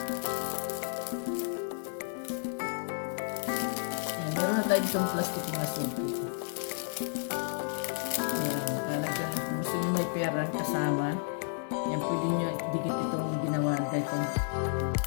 Ayan, meron na tayo ditong plastic na suki. Ayan, lalagyan. Kung gusto niyo may pera kasama, yan, pwede nyo dikit itong ginawa kahit itong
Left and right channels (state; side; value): silent; right; digital silence